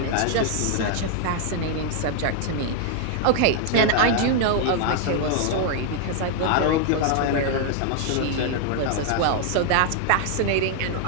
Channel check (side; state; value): both; different; correlation 0.00